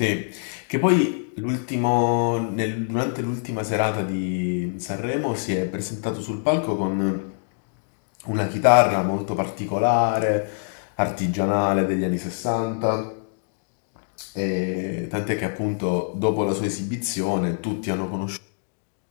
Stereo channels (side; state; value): right; silent; digital silence